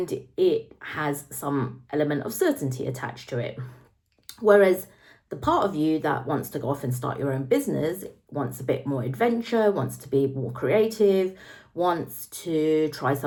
it has some element of certainty attached to it. Whereas the part of you that wants to go off and start your own business wants a bit more adventure, wants to be more creative, wants to try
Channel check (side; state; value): both; identical; correlation 1.00